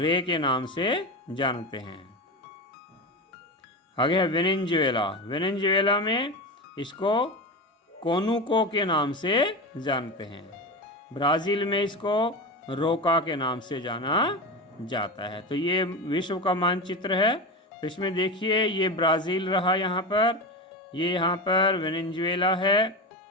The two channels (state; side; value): normal; both; correlation 0.22